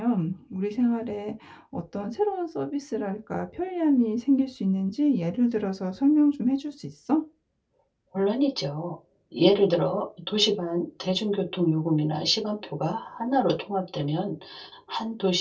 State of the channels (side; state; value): both; identical; correlation 1.00